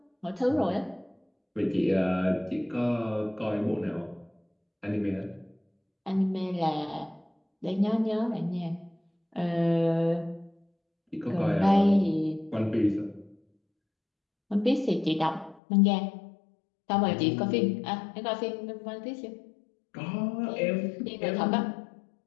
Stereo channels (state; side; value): drops out; right; at 15.6 s